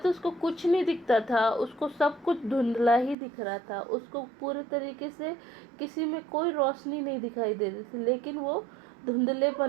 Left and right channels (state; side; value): drops out; left; at 3.2 s